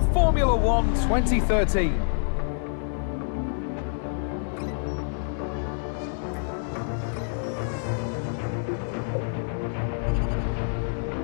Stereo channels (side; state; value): right; silent; digital silence